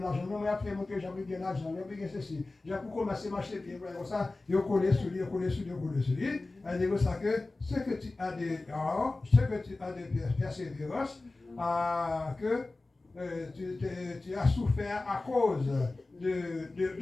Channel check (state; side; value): quieter; right; 3.2 dB